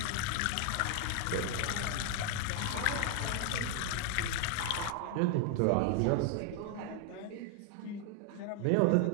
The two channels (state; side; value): different; both; correlation 0.00